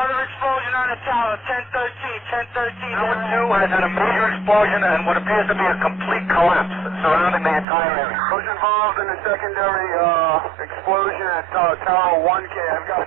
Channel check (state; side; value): drops out; left; at 7.7 s